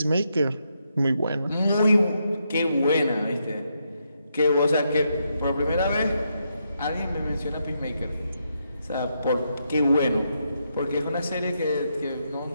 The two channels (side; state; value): both; inverted; correlation -0.80